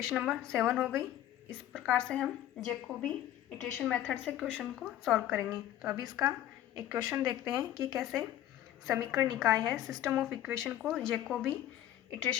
नंबर 7 हो गई। इस प्रकार से हम जैकोबी इटरेशन मेथड से क्वेश्चन को सॉल्व करेंगे। तो अभी इसका एक क्वेश्चन देखते हैं कि कैसे समीकरण निकाय है सिस्टम ऑफ इक्वेशन को जैकोबी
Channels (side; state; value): right; quieter; 12.6 dB